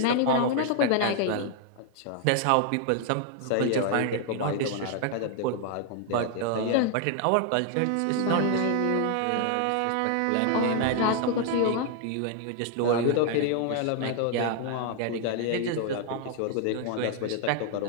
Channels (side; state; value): both; different; correlation 0.00